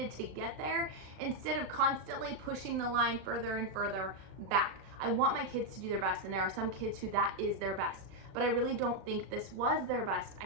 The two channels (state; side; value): late; left; 37 ms